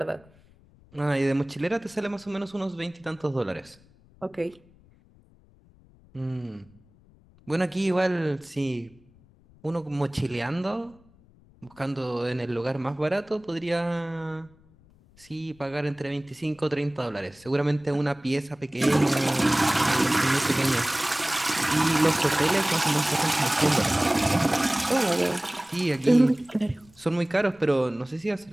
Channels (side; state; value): left; noise; rumble, 28 dB below the sound